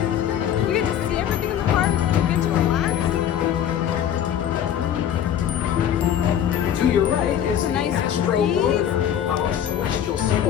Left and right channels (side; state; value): right; quieter; 9.9 dB